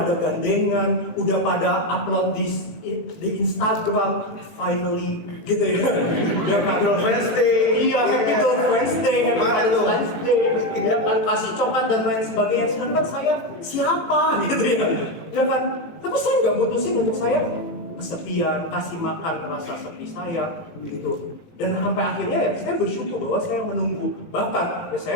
gandengan, udah pada upload di Instagram, finally gitu ya. Ya Happy Girlfriend's Day. Iya, Happy Girlfriend's Day, Happy Valentine's Day, ya kan kasih coklat dan lain sebagainya. Sedangkan saya siapa gitu ya, ya kan. Tapi saya nggak mutusin untuk saya kesepian, kasih makan rasa sepi saya gitu. Dan sampai akhirnya ya saya bersyukur bahwa saya menunggu. Bahkan ya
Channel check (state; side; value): late; right; 18 ms